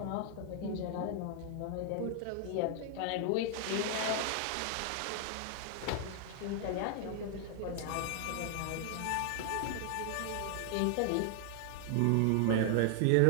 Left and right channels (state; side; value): different; both; correlation 0.00